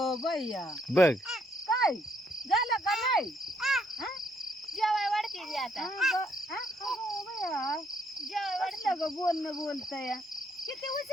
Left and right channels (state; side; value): normal; both; correlation 0.71